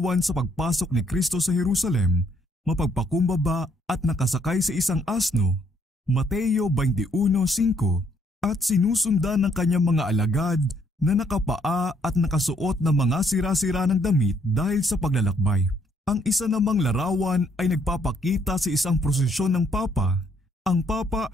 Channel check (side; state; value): both; normal; correlation 0.69